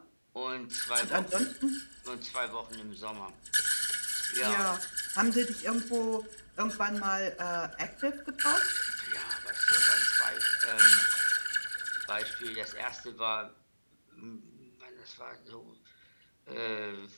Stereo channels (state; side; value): inverted; both; correlation -1.00